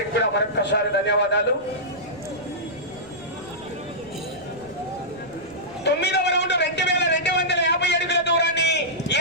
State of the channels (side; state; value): right; noise; rumble, 24 dB below the sound